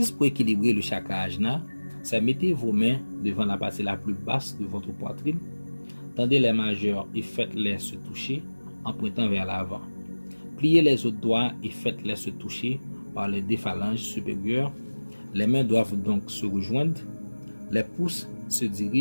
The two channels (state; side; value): inverted; both; correlation -1.00